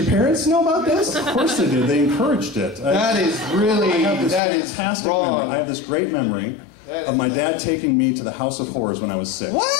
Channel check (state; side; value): drops out; right; at 4.4 s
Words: parents know about this? Of course they did. They encouraged it. That is really... That is fantastic memory. I have this great memory of my dad taking me to the House of Horrors when I was 6.